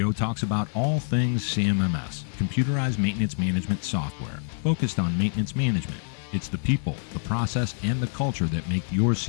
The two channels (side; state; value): right; silent; 61 dB below the other